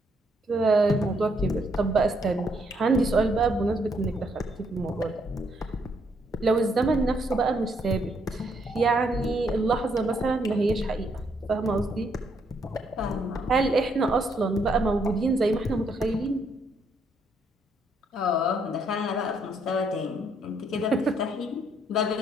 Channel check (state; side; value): normal; both; correlation 0.72